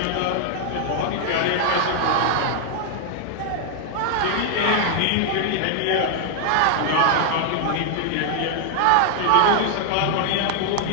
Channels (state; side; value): different; both; correlation 0.00